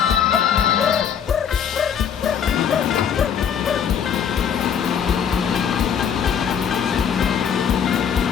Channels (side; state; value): right; quieter; 7.9 dB